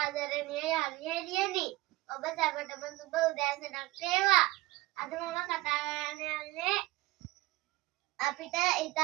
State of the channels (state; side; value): quieter; left; 19.5 dB